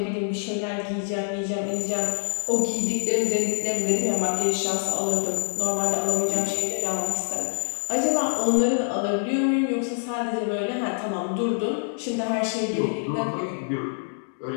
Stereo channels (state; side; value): silent; right; digital silence